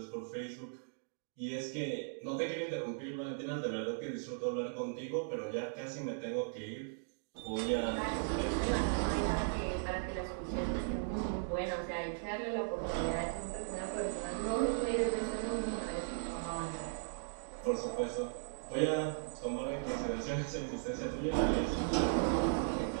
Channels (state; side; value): silent; left; digital silence